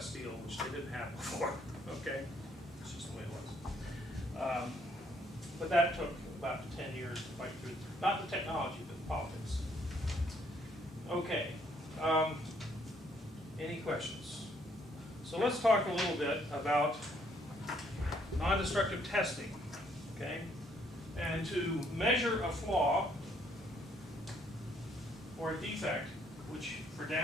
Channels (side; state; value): both; normal; correlation 0.67